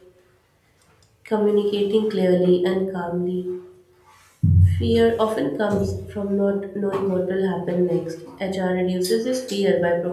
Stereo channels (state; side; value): identical; both; correlation 1.00